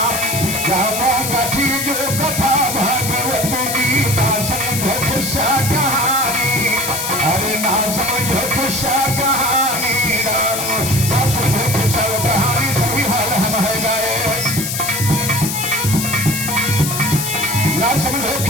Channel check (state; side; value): noise; left; hiss, 3 dB below the sound